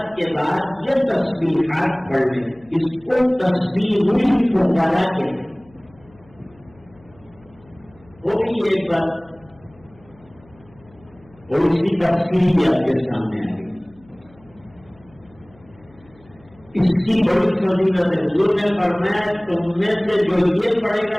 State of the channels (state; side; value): noise; left; hum, 28 dB below the sound